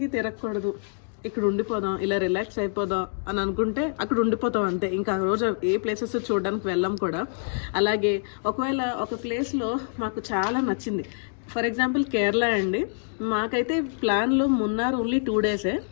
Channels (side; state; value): right; silent; digital silence